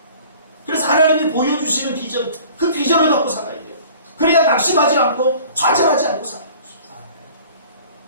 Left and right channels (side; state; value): both; inverted; correlation -0.48